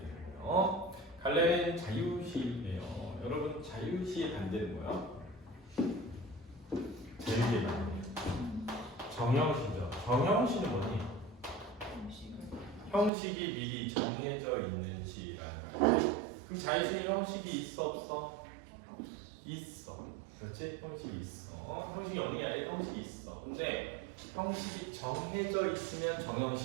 거예요. 갈래는 자유시예요. 여러분 자유시의 반대는 뭐야? 자유시의 반대. 정형시죠. 정형시는 뭐니? 형식이 미리 정해져 있는 시라는 거예요. 그럼 자유시는 형식이 있어 없어? 있어. 그렇지? 형식이 있어. 형식이 없는 게 아니라 형식이 있어. 근데 형식이 정해져 있으면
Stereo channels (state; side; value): drops out; left; at 13.1 s